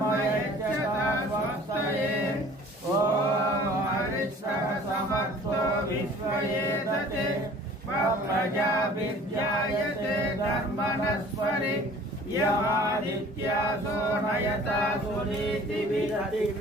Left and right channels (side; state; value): both; normal; correlation 0.49